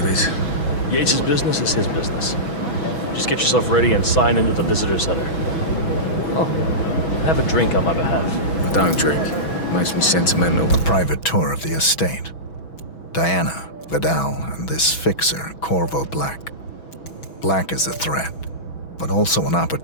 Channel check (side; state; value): right; late; 6.1 ms